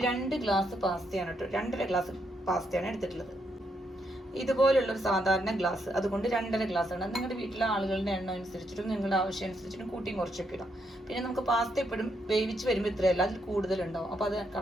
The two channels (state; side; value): normal; both; correlation 0.77